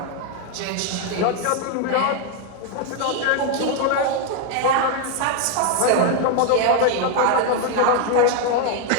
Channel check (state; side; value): different; both; correlation 0.01